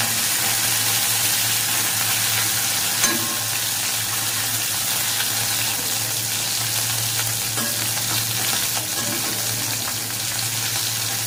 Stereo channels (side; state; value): both; identical; correlation 1.00